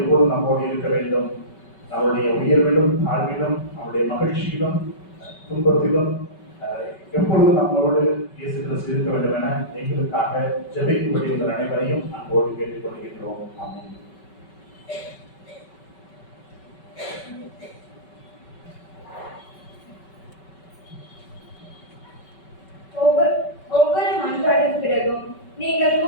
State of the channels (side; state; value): right; late; 5.2 ms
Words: நம்மோடு இருக்க வேண்டும். அவருடைய உயர்விலும் தாழ்விலும், அவருடைய மகிழ்ச்சியிலும் துன்பத்திலும் எப்பொழுதும் நம்மளோடு இயேசு கிறிஸ்து இருக்க வேண்டும் என எங்களுக்காக ஜெபிக்கும்படி உங்கள் அனைவரையும் அன்போடு கேட்டுக்கொள்கின்றோம். ஆமென். ஒவ்வொரு மன்றாடின் பிறகும் நீங்கள்